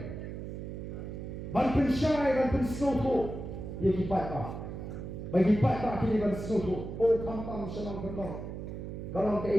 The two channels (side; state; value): right; noise; hum, 7 dB below the sound